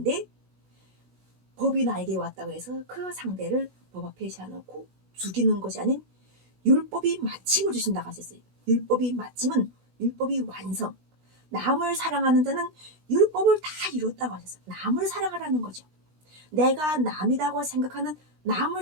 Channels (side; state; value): left; late; 16 ms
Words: 법이 나에게 왔다고 해서 그 상대를 법 앞에 세워놓고 죽이는 것이 아닌 율법이 마침을 주신다고 하셨어요. 율법이 마침은 율법이 완성. 남을 사랑하는 자는 율법을 다 이뤘다고 하셨어요. 남을 사랑하라는 거죠. 내가 남이라고 생각하는 남을